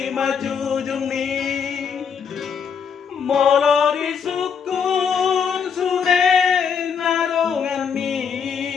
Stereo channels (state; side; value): quieter; right; 6.7 dB